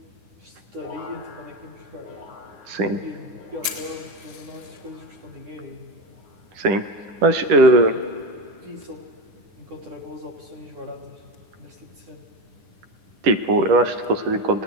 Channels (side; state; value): left; late; 9.9 ms